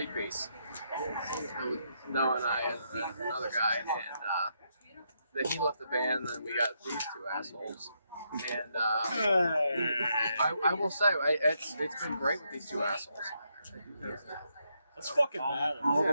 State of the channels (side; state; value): both; inverted; correlation -0.79